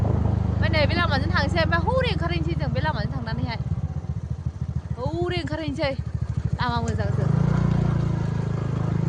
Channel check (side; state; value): both; identical; correlation 1.00